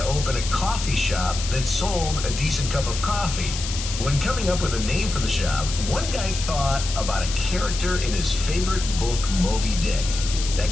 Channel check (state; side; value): noise; left; hiss, 7 dB below the sound